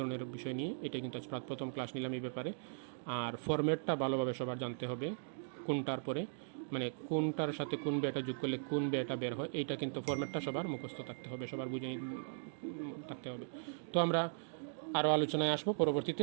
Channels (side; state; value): left; silent; digital silence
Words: বিষয় নিয়ে। এটা কিন্তু আজ প্রথম ক্লাস নিলাম এই ব্যাপারে। আর ফরম্যাটটা ভালোভাবে সবার জানতে হবে, কোনটার পরে মানে কোনটার সাথে কোন ব্যয়টা যোগ করলে কোন ব্যয়টা বের হয়, এইটা কিন্তু ফরম্যাটটা সবার মুখস্থ থাকতে হবে, সবার বুঝে থাকতে হবে। তো আমরা আরও আলোচনায় আসবো পরবর্তীতে।